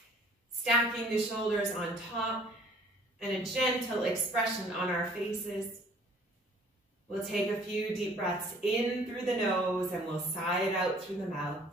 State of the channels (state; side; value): normal; both; correlation 0.55